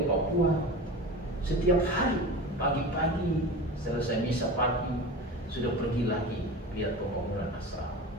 Papua, setiap hari pagi-pagi selesai misa pagi sudah pergi lagi lihat pembangunan asrama.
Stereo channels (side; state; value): both; normal; correlation 0.32